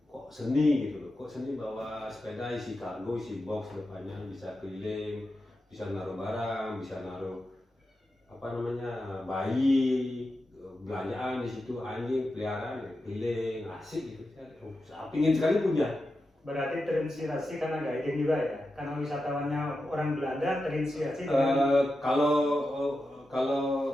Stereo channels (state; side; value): normal; both; correlation 0.90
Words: Kok seni gitu loh. Kok seni bawa sepeda isi kargo, isi box depannya bisa keliling, bisa naruh barang, bisa naruh apa namanya bayi, belanjaan di situ, anjing peliharaan keliling, asik gitu. Saya pingin sekali punya. Berarti terinspirasi karena guiding juga ya, karena wisatawannya orang Belanda terinspirasi.